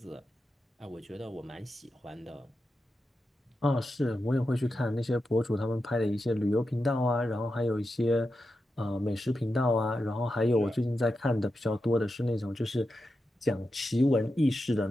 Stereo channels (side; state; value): both; normal; correlation 0.89